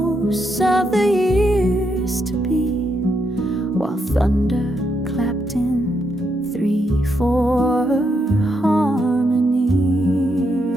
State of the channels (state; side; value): normal; both; correlation 0.80